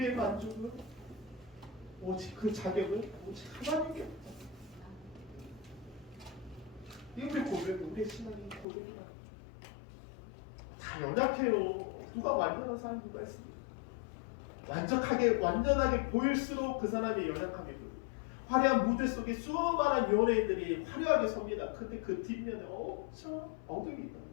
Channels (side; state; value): right; drops out; at 8.7 s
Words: 만족은 오직 그 자격은 오직 하나님께 없다. 이 우리 고백은 우리의 신앙이 고백이라. 다 연약해요. 누가 완전한 사람이 누가 있습니까? 완전하게 보일수록 그 사람의 연약함이 보여요. 화려한 무대 속에 수많은 연예인들이 화려하게 섭니다. 근데 그 뒷면에 엄청 엉덩이 있다는 거예요.